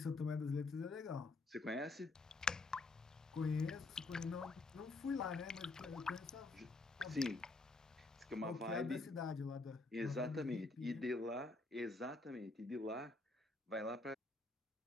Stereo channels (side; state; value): right; quieter; 3.3 dB